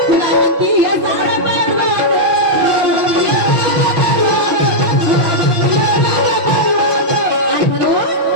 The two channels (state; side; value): late; left; 5.8 ms